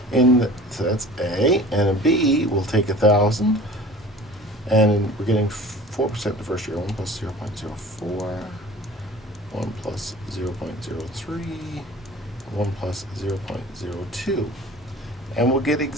So that's A, and a B, we'll take 1,000, and we're getting 4% the first year. 1 plus 0.04, 1 plus 0.03, 1 plus 0.02, and we'll get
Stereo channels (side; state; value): both; normal; correlation 0.43